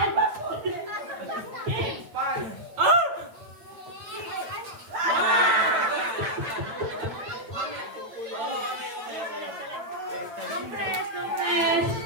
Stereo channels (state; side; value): late; left; 8.6 ms